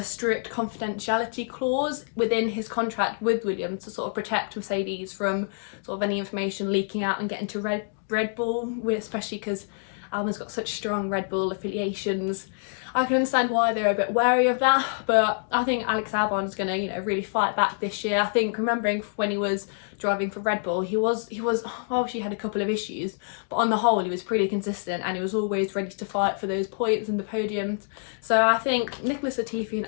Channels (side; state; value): right; silent; digital silence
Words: strict confidentiality clause within his contract with Williams to sort of protect Mercedes from sort of any information leaking out and getting to Red Bull, especially because Albon's got such strong Red Bull affiliations. I can understand why they're a bit wary of that, but I think Alex Albon is going to, really fight back this year. I think, remembering when he was driving for Red Bull, he obviously had a couple of issues, but on the whole he was pretty consistent and he was always ready to fight for those points and the podiums. So I think Nicholas Latifi and